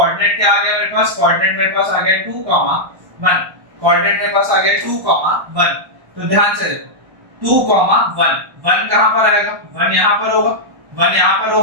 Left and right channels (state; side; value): late; left; 1.1 ms